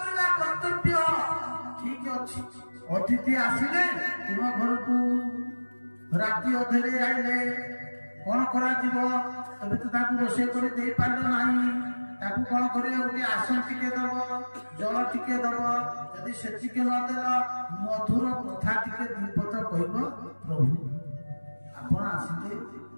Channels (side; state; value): both; inverted; correlation -1.00